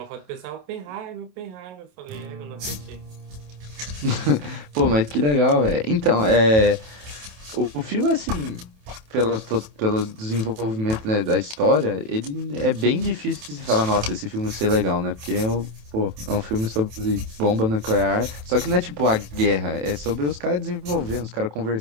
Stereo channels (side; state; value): left; late; 27 ms